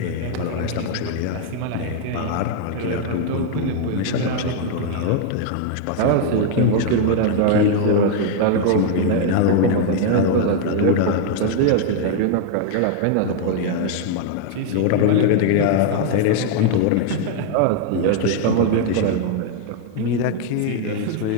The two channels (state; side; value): different; both; correlation 0.00